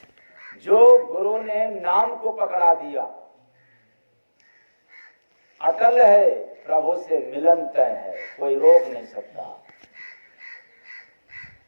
जो गुरु ने नाम को पकड़ा दिया, अटल है, प्रभु से मिलन तय है, कोई रोक नहीं सकता।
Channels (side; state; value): both; inverted; correlation -1.00